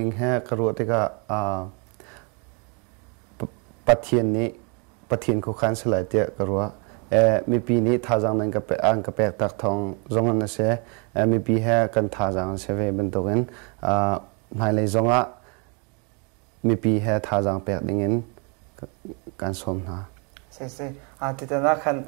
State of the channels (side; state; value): left; quieter; 34.5 dB